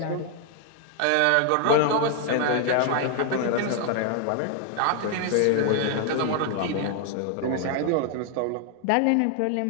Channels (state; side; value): different; both; correlation 0.00